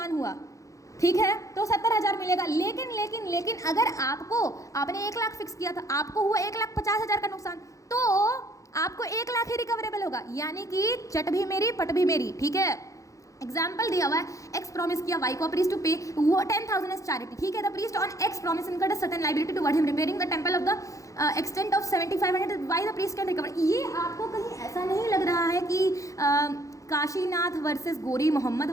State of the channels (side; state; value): right; late; 0.16 ms